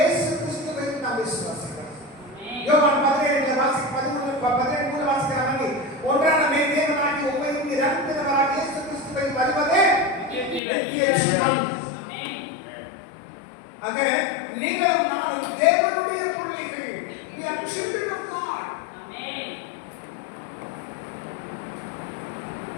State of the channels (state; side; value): drops out; right; at 10.6 s